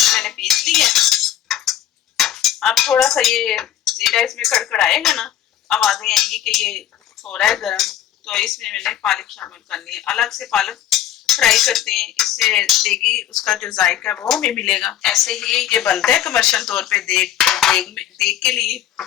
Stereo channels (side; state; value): right; quieter; 11.3 dB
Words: मैंने पीस ली है। अब थोड़ा सा ये जीरा इसमें कड़कड़ाएगा ना, आवाजें आएंगी कि ये हो रहा है गर्म, तो इसमें मैंने पालक शामिल करनी है। अलग से पालक फ्राई करते हैं, इससे देगी उसका जो जायका है वो हमें मिलेगा। ऐसे ही ये बनता है कमर्शियल तौर पे देग के लिए।